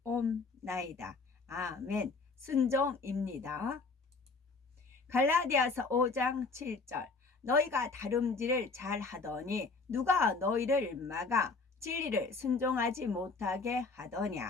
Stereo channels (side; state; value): right; quieter; 4.1 dB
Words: 아멘. 순종입니다. 갈라디아서 5장 7절. 너희가 다름질을 잘 하더니 누가 너희를 막아 진리를 순종하지 못하게